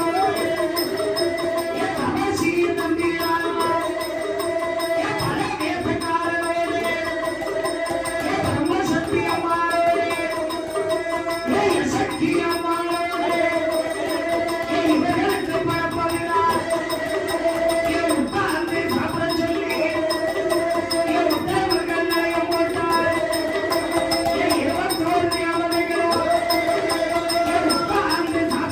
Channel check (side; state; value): both; identical; correlation 1.00